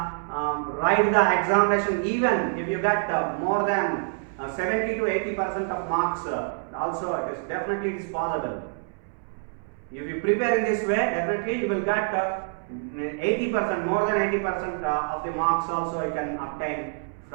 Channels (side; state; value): left; silent; 61 dB below the other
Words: the examination even if you get more than 70 to 80% of marks. Also, it is definitely possible. If you prepare in this way, definitely you will get 80%, more than 80% of the marks also you can obtain